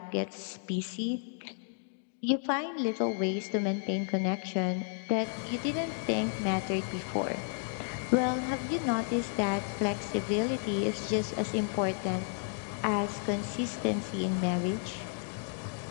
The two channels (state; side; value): silent; right; 56 dB below the other